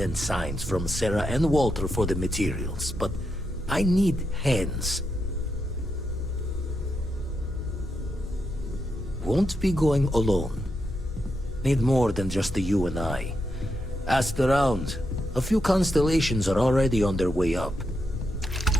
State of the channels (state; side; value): normal; both; correlation 0.84